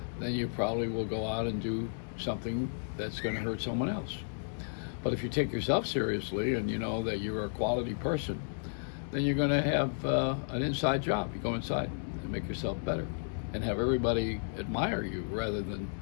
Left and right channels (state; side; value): silent; right; digital silence